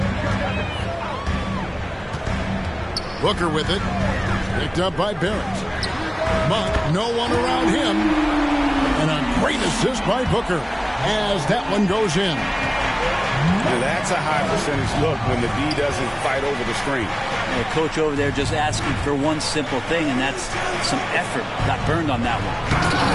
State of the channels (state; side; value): identical; both; correlation 1.00